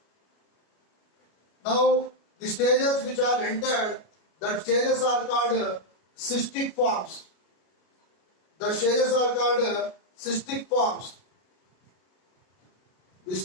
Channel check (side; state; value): right; late; 33 ms